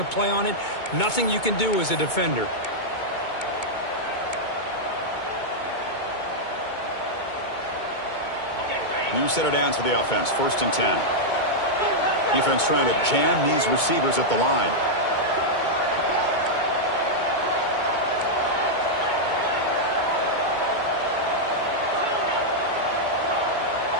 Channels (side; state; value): right; late; 2.2 ms